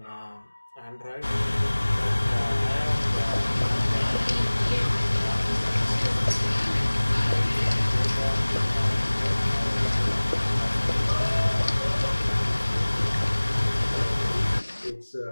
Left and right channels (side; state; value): both; inverted; correlation -1.00